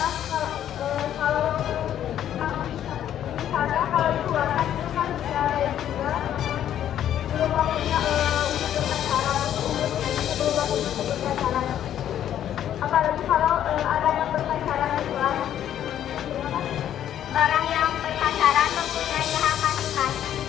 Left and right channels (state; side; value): quieter; right; 10.7 dB